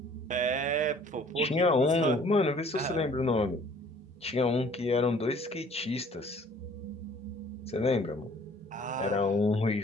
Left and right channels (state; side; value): normal; both; correlation 0.55